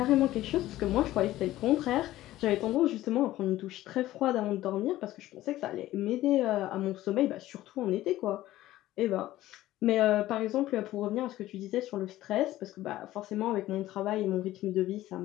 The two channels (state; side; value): quieter; right; 15.3 dB